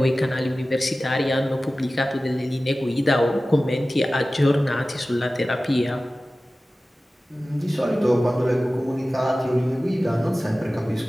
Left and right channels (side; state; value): both; normal; correlation 0.96